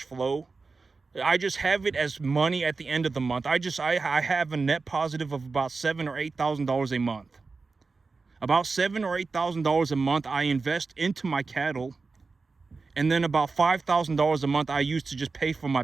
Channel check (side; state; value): left; quieter; 4.2 dB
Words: flow. I just have it as money at the end of the month. I have a net positive of about $7,000 or $8,000 a month. About $7,000 or $8,000 a month I invest into my cattle, and then about $5,000 a month I use to just pay for